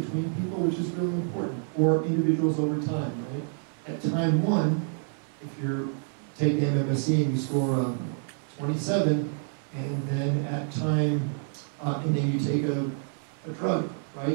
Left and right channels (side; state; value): left; silent; 58 dB below the other